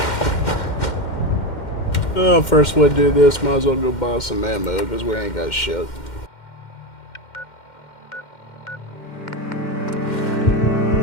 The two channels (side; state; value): right; late; 2.1 ms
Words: Well, first we do this, might as well go buy some ammo, because we ain't got shit.